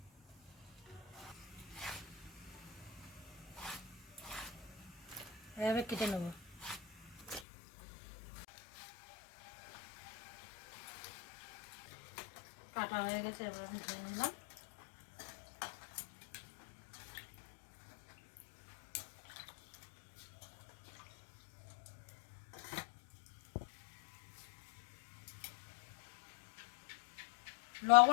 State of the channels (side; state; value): right; drops out; at 7.4 s